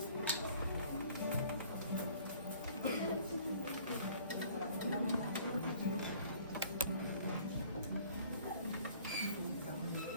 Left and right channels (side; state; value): both; inverted; correlation -0.53